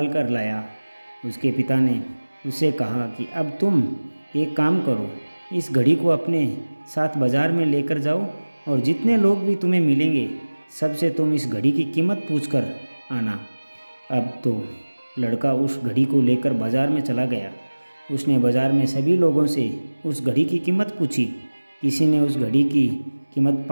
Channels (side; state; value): both; inverted; correlation -1.00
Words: कर लाया। उसके पिता ने उससे कहा कि अब तुम एक काम करो, इस घड़ी को अपने साथ बाज़ार में लेकर जाओ और जितने लोग भी तुम्हें मिलेंगे सबसे तुम इस घड़ी की कीमत पूछ कर आना। अब तो लड़का उस घड़ी को लेकर बाज़ार में चला गया। उसने बाज़ार में सभी लोगों से उस घड़ी की कीमत पूछी। किसी ने उस घड़ी की कीमत